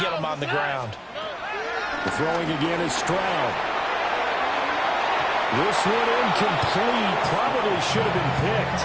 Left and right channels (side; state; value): both; identical; correlation 1.00